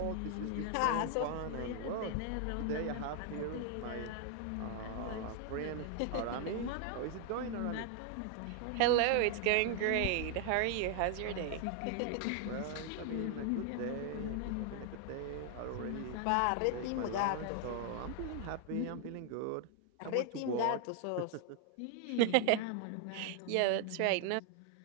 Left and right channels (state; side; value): different; both; correlation 0.00